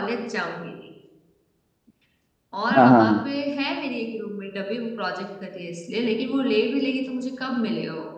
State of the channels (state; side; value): identical; both; correlation 1.00